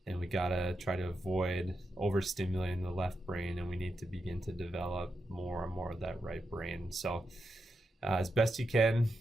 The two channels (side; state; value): both; normal; correlation 0.86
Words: And we gotta try to avoid overstimulating the left brain, and we need to begin to develop more and more of that right brain. So as best you can,